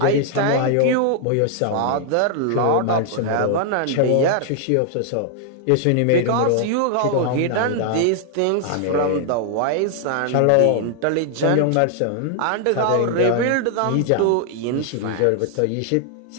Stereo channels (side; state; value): both; different; correlation 0.00